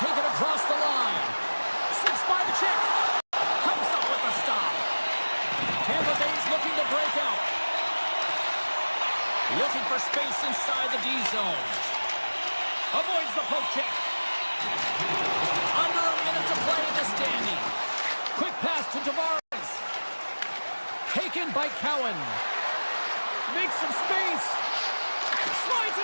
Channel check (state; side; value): inverted; both; correlation -1.00